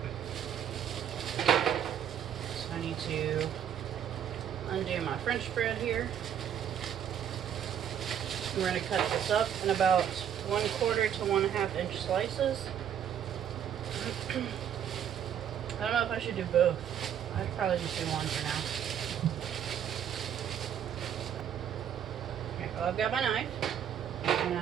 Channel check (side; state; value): left; quieter; 9.3 dB